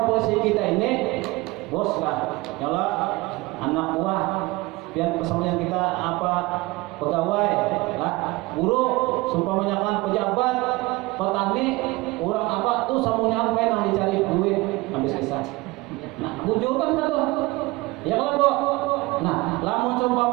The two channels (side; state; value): left; quieter; 21.8 dB